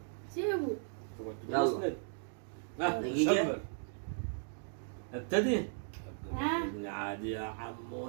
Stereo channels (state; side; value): silent; left; digital silence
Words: سيبه. يلا. اسند. دقيقة. شبر. ابتدي. ها؟ عادي يا